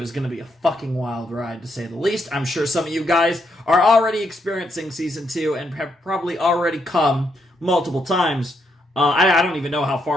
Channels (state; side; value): normal; both; correlation 0.77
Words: is going to be a fucking wild ride, to say the least. I'm sure some of you guys are already experiencing Season 2 and have probably already come multiple times. I don't even know how